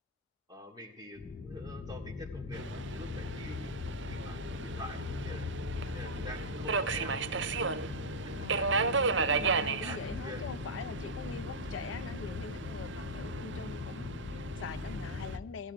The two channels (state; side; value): normal; both; correlation -0.04